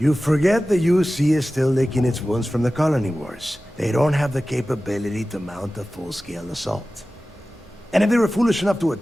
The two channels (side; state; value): both; normal; correlation 0.96